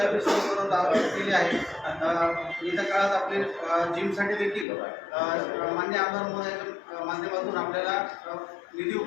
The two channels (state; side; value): drops out; right; at 4.7 s